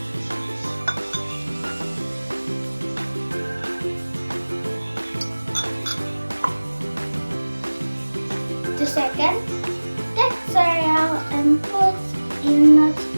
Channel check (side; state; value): both; inverted; correlation -1.00